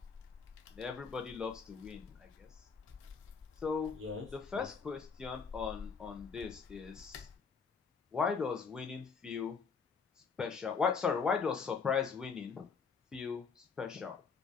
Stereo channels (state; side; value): quieter; right; 5.7 dB